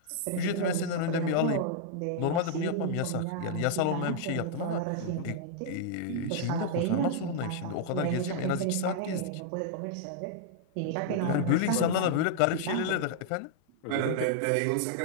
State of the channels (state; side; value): different; both; correlation -0.01